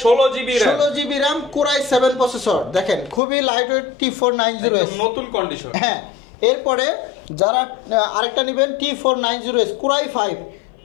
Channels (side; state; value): right; drops out; at 3.2 s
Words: 16 GB RAM কোরাই 7 প্রসেসর, দেখেন খুবই লাইট ওয়েট T490S, নতুন কন্ডিশন। হ্যাঁ, এরপরে যারা আরেকটা নেবেন T490S কোরাই 5,